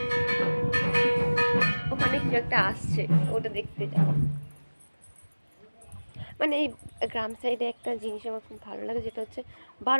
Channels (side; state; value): both; inverted; correlation -1.00